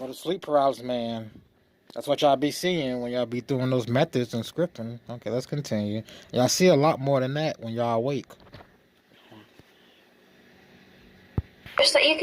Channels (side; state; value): both; identical; correlation 1.00